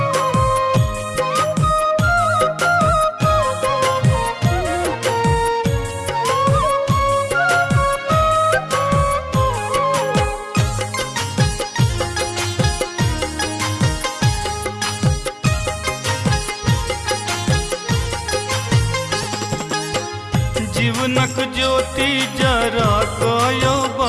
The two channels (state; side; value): identical; both; correlation 1.00